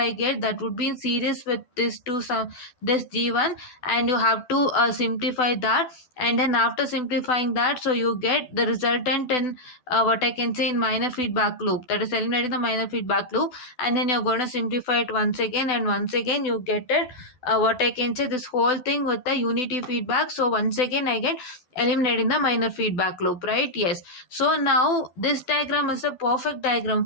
get, that would be in series with this two sum, this g1, and you have to simplify that, and then after simplifying that, so you get the resultant in what I can say in minor feedback loop, that is eliminating the minor feedback loop, and then you're going to simplify it once again, and once again you get it what I can say, this whole thing with the unity feedback. So once again I get eliminating the minor feedback loop, right? Yes. So now this diagram is a perfect diagram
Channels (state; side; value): late; right; 12 ms